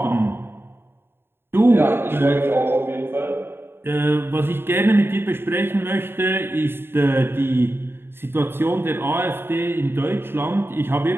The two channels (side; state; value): left; late; 0.11 ms